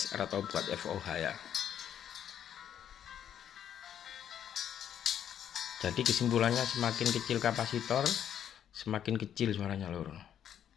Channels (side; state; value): right; quieter; 9.6 dB